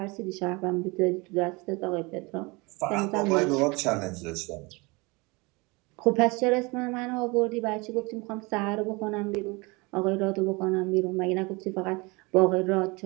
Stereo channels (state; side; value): quieter; left; 26.3 dB